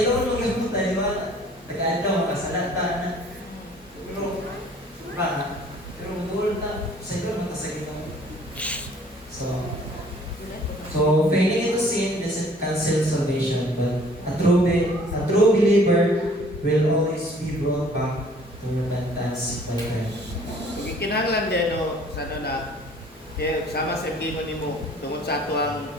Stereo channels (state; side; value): normal; both; correlation 0.55